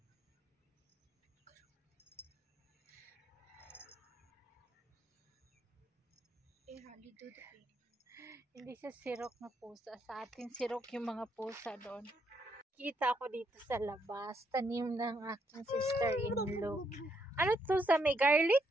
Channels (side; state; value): both; normal; correlation 0.76